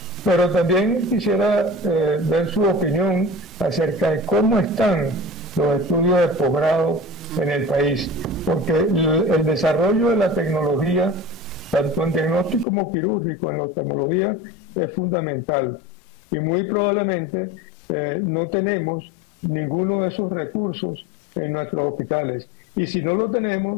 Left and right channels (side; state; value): right; drops out; at 12.7 s